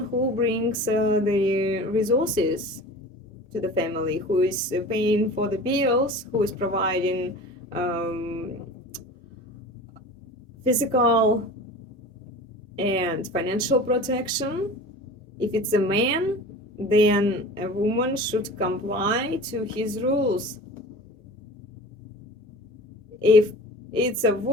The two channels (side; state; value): both; normal; correlation 0.37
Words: who brings the resources to the family, who is paying for the bills, who is providing physical and financial protection. If it's a man, then a woman should comply to his rules. If it's a